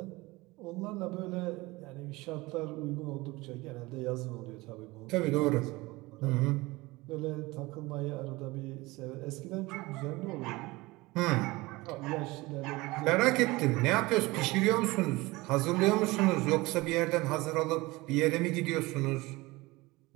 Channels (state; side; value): quieter; left; 21.7 dB